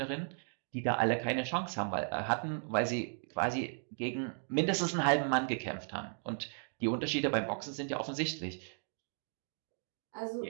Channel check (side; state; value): left; silent; 54 dB below the other